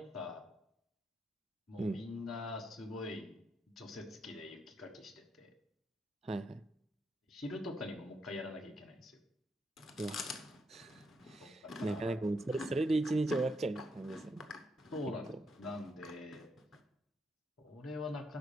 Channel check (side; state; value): both; normal; correlation 0.79